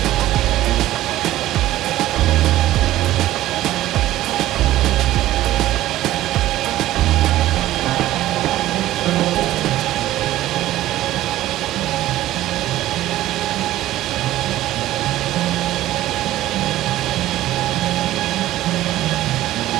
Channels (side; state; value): left; quieter; 14.8 dB